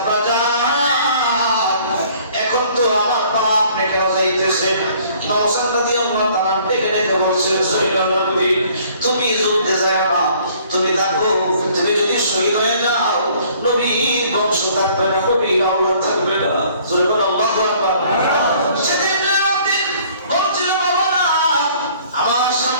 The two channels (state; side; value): inverted; both; correlation -0.57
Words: জান, এখন তো আমার পা আপনি কেন যাইতেছেন? ইমাম হোসেন রাদিয়াল্লাহু তাআলা ডেকে বলছেন, জয়নুলাবদিন তুমি যুদ্ধে যাও না, তুমি থাকো। তুমি যদি শহীদ হয়ে যাও, নবীর বংশ থাকবে না, নবীর আওলাদ থাকবে না। সুবহানাল্লাহু আকবার। সেদিন জয়নুলাবদিন বলছিল, বাবা আমার